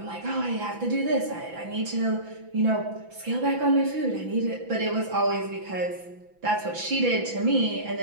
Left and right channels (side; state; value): left; late; 6.0 ms